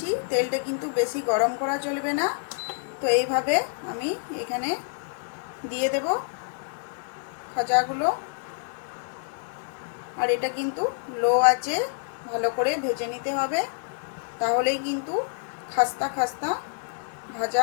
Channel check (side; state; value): right; silent; 60 dB below the other